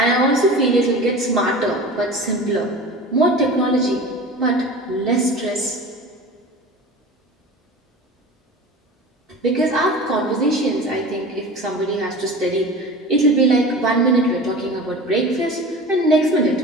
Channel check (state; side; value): normal; both; correlation 0.35